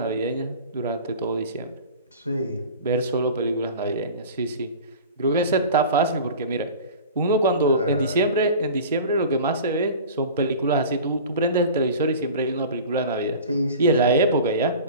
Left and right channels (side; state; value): both; inverted; correlation -0.38